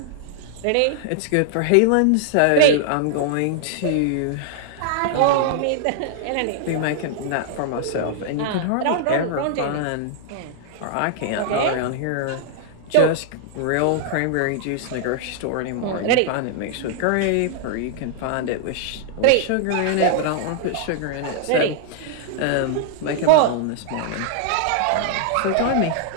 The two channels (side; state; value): both; different; correlation -0.01